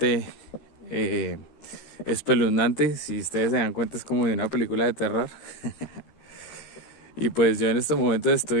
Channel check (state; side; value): late; right; 13 ms